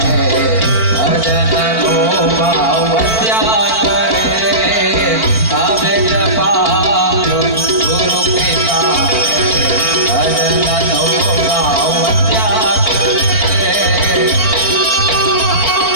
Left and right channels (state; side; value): late; right; 4.5 ms